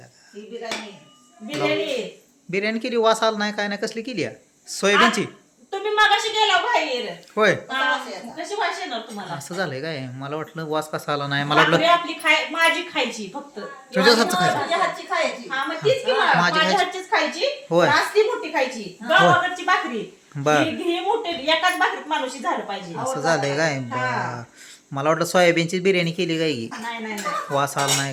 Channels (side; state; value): both; identical; correlation 1.00